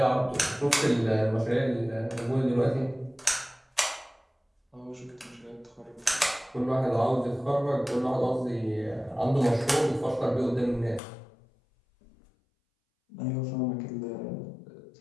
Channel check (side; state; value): right; drops out; at 11.0 s